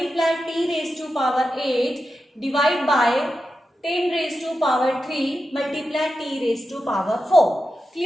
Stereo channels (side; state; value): both; normal; correlation 0.90